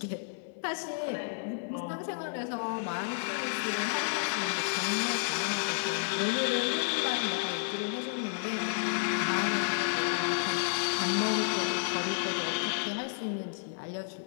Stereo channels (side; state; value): right; silent; 57 dB below the other